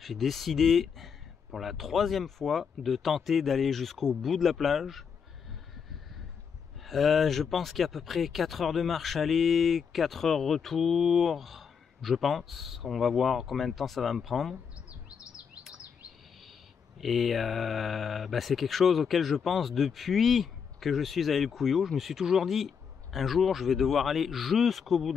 décidé pour la 3e fois de tenter d'aller jusqu'au bout de la plage. Je pense qu'il y a à peu près 4 heures de marche aller, 4 heures retour, je pense. On va voir combien de temps ça va me prendre. Et c'est quelque chose auquel je pense depuis que je suis à El Cuyo. Je me suis toujours dit, un jour je vais devoir aller jusqu'au bout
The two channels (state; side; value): quieter; right; 6.6 dB